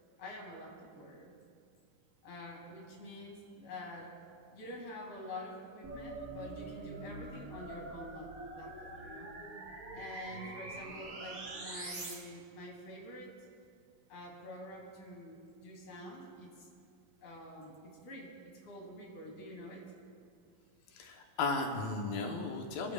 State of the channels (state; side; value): late; left; 4.1 ms